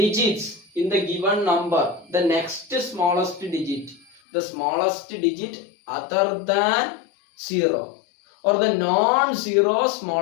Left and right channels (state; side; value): drops out; right; at 4.2 s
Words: in the given number. The next smallest digit. The smallest digit other than 0. Or the non-zero